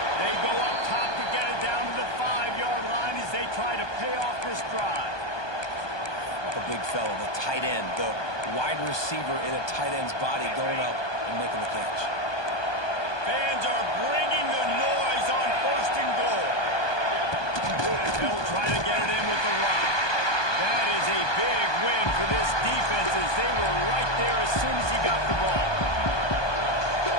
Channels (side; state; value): right; late; 1.2 ms